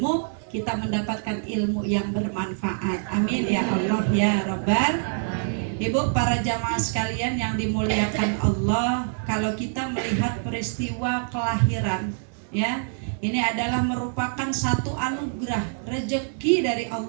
kita mendapatkan ilmu yang bermanfaat. Amin ya Allah ya Rabbal. Ibu, para jamaah sekalian yang dimuliakan Allah, kalau kita melihat peristiwa kelahiran ya, ini adalah merupakan satu anugerah, rezeki dari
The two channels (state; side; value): silent; left; digital silence